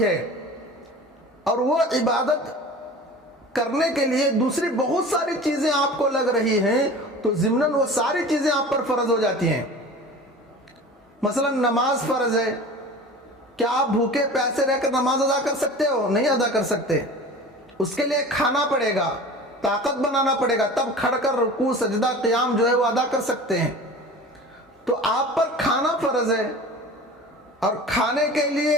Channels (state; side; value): normal; both; correlation 0.38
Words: ہے، اور وہ عبادت کرنے کے لیے دوسری بہت ساری چیزیں آپ کو لگ رہی ہیں، تو ضمناً وہ ساری چیزیں آپ پر فرض ہو جاتی ہیں۔ مثلا نماز فرض ہے، کیا آپ بھوکے پیاسے رہ کر نماز ادا کر سکتے ہو؟ نہیں ادا کر سکتے۔ اس کے لیے کھانا پڑے گا، طاقت بنانا پڑے گا، تب کھڑ کر رکوع سجدہ قیام جو ہے وہ ادا کر سکتے ہیں۔ تو آپ پر کھانا فرض ہے، اور کھانے کے لیے